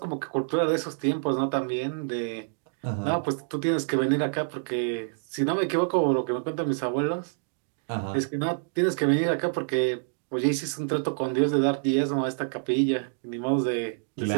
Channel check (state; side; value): silent; left; digital silence